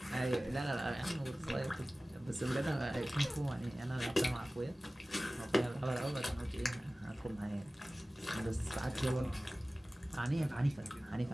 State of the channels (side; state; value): both; normal; correlation 0.97